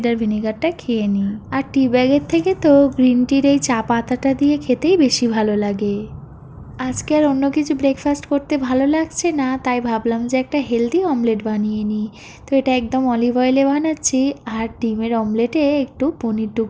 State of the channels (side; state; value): both; identical; correlation 1.00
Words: ভিনেগারটা খেয়ে নিই। আর টি ব্যাগের থেকে তো গ্রিন টির এই চা পাতাটা দিয়ে খেতেই বেশি ভালো লাগে। আজকে আর অন্য কিছু ব্রেকফাস্ট করতে ভালো লাগছে না, তাই ভাবলাম যে একটা হেলদি অমলেট বানিয়ে নিই। তো এটা একদম অলিভ অয়েলে বানাচ্ছি, আর ডিমের অমলেটে একটু পনির